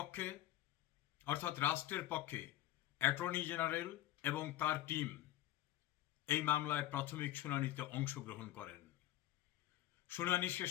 অর্থাৎ রাষ্ট্রের পক্ষে অ্যাটর্নি জেনারেল এবং তার টিম এই মামলায় প্রাথমিক শুনানিতে অংশগ্রহণ করেন। শুনানি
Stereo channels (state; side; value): quieter; right; 14.2 dB